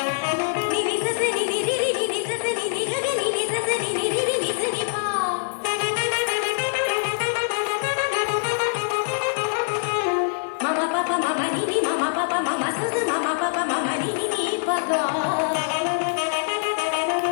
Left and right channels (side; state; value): right; silent; 63 dB below the other